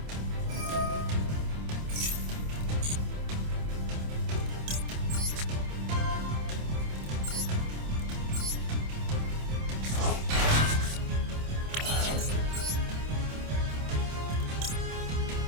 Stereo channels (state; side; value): late; left; 27 ms